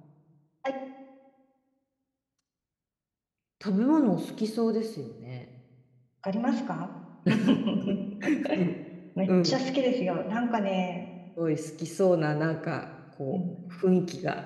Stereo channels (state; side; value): identical; both; correlation 1.00